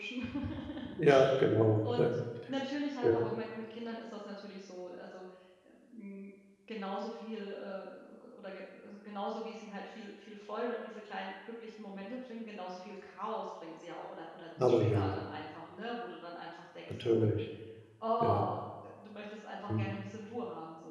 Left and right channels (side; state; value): both; identical; correlation 1.00